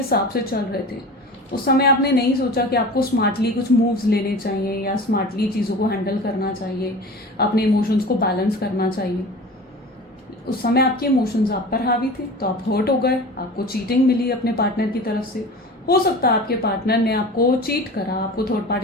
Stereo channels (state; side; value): normal; both; correlation 0.36